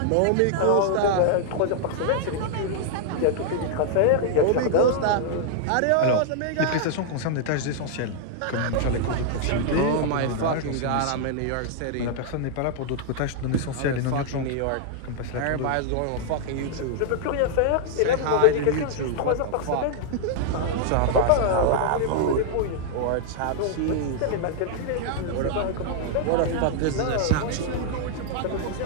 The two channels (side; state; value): both; different; correlation 0.00